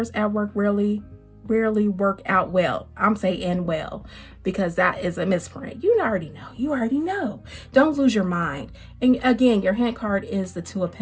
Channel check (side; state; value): both; identical; correlation 1.00